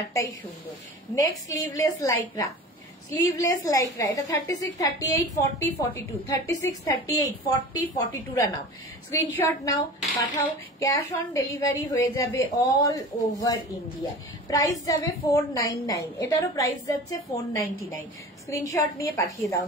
সুন্দর। Next sleeveless lycra, sleeveless lycra. এটা 36, 38, 40, 42 36, 38, 40, 42 নাও। স্ক্রিনশট নাও, পাঠাও। ক্যাশ অন ডেলিভারি হয়ে যাবে অল ওভার ইন্ডিয়া। প্রাইস যাবে 499। এটারও প্রাইস যাচ্ছে 499। স্ক্রিনশট নিয়ে পাঠিয়ে দাও।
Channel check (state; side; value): normal; both; correlation 0.36